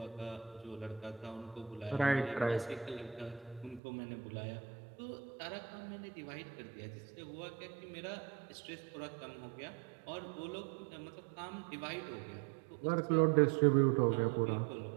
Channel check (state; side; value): drops out; left; at 3.8 s